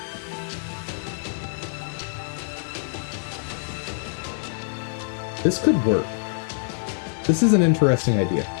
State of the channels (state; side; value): silent; right; 62 dB below the other